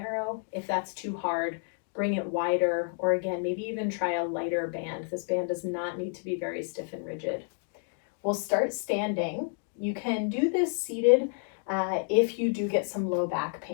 If that's too hard, bring it wider, or again, maybe even try a lighter band. This band does not need to be very stiff and rigid. We'll start standing. You can do this seated if you do get some low back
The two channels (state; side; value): silent; right; 58 dB below the other